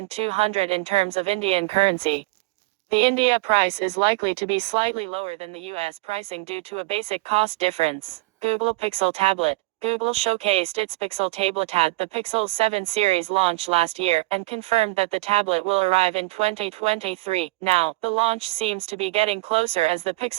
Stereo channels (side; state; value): left; quieter; 22.4 dB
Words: in terms of Indian currency. The India price is likely to be slightly lower than the US pricing due to a basic cost difference. Google Pixel Tablet. Google showcased its Pixel tablet at the Pixel 7 series launch last year and confirmed that the tablet will arrive in 2023. Now, the launch seems to be getting closer as the